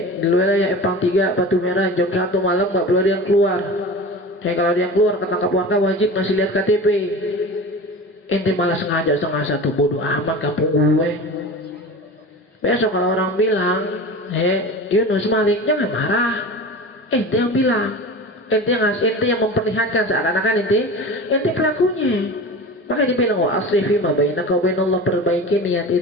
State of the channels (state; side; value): normal; both; correlation 0.33